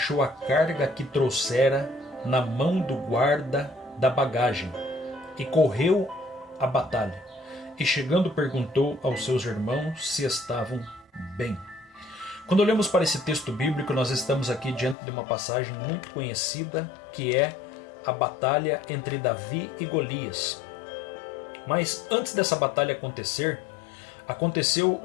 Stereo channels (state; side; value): drops out; right; at 15.0 s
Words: a carga que trouxera na mão do guarda da bagagem, e correu à batalha, e chegando perguntou aos seus irmãos se estavam bem. Quando olhamos para esse texto bíblico, nós estamos aqui diante de uma passagem muito conhecida, que é a batalha entre Davi e Golias. Mas antes dessa batalha acontecer, aconteceu